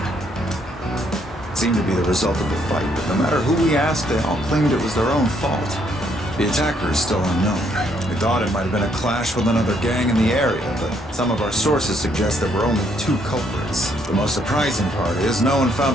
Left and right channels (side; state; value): both; normal; correlation 0.70